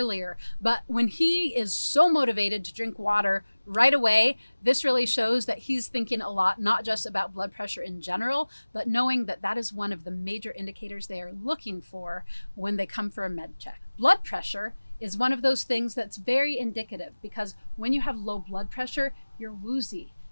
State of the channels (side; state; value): both; inverted; correlation -1.00